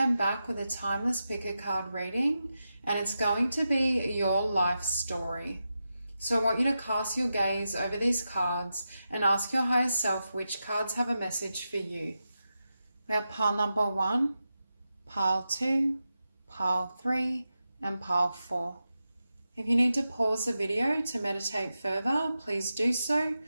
back with a timeless pick a card reading, and it's going to be your life story. So I want you to cast your gaze over these cards and ask your higher self which cards have a message for you. We have pile number 1, pile 2, pile 3, and pile 4. If you need to pause the video to meditate further, please do so.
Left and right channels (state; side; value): inverted; both; correlation -0.90